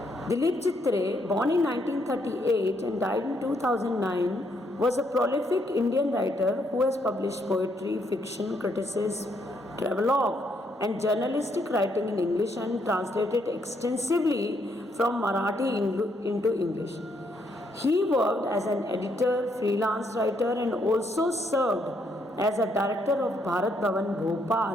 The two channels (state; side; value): normal; both; correlation 0.73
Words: Dilip Chitre, born in 1938 and died in 2009, was a prolific Indian writer who has published poetry, fiction, criticism, travelogue, and journalistic writing in English and translated extensively from Marathi into English. He worked as an editor, freelance writer, and also served as a director of Bharat Bhavan